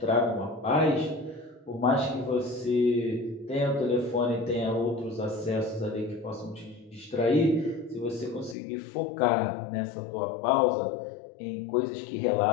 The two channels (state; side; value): drops out; right; at 8.6 s